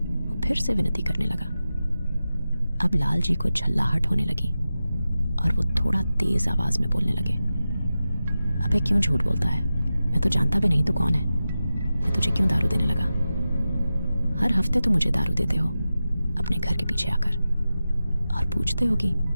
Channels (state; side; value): inverted; both; correlation -0.93